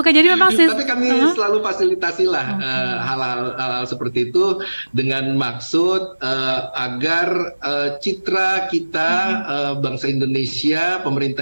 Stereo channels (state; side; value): inverted; both; correlation -1.00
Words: jadi memang tapi kami selalu fasilitasi lah hal-hal seperti itu dengan maksud agar citra kita bangsa Indonesia,